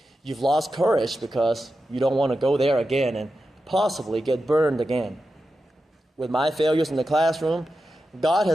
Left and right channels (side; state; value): both; normal; correlation 0.91